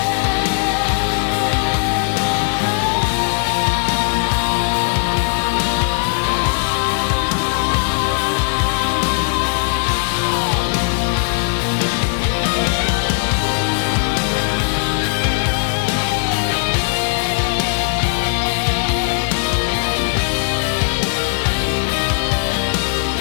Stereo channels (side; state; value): right; silent; 62 dB below the other